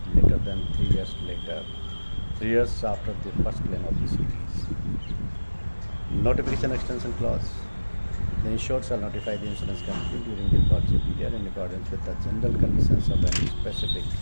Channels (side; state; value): both; inverted; correlation -1.00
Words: later than 3 years later, 3 years after the first claim of the series. Notification extension clause. The insured shall notify the insurance company during the policy period in accordance with the general conditions of any specific